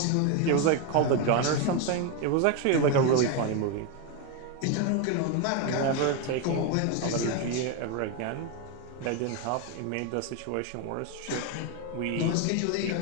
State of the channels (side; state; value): both; different; correlation 0.02